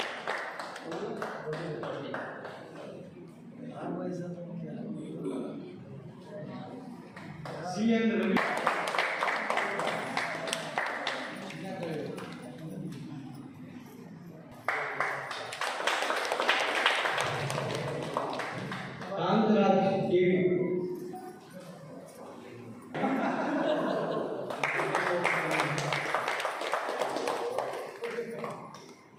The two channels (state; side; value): identical; both; correlation 1.00